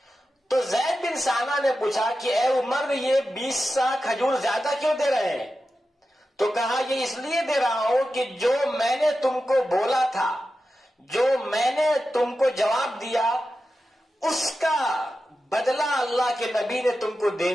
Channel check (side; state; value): both; normal; correlation 0.91